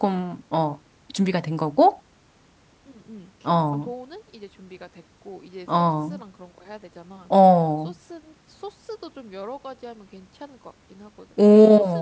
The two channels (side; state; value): both; identical; correlation 1.00